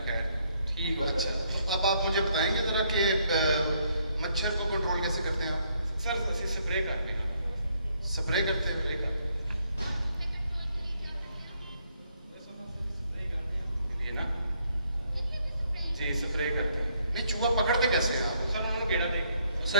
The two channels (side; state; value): both; inverted; correlation -0.71